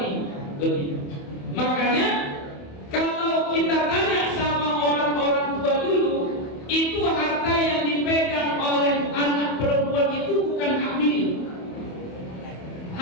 ini. Begitu. Makanya kalau kita tanya sama orang-orang tua dulu, itu harta yang dipegang oleh anak perempuan itu bukan hak milik,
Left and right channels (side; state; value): right; late; 28 ms